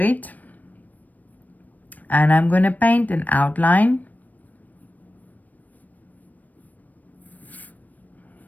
And I'm going to paint an outline.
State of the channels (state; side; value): late; right; 0.081 ms